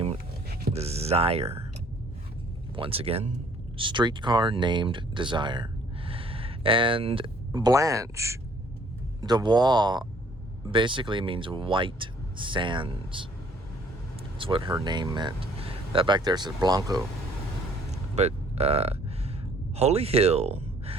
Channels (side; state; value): both; normal; correlation 0.59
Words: Desire. Once again, Streetcar Named Desire. And Blanche Dubois basically means white sands. That's what her name meant. That back there says Blanco. But Holy Hill,